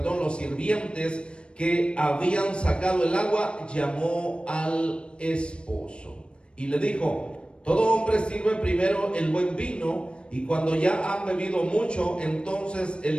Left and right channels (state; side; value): late; right; 0.057 ms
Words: sirvientes que habían sacado el agua, llamó al esposo y le dijo: todo hombre sirve primero el buen vino, y cuando ya han bebido mucho, entonces